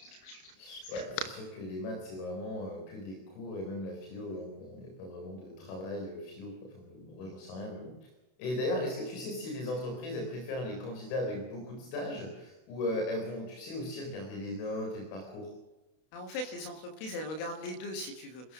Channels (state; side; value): late; right; 32 ms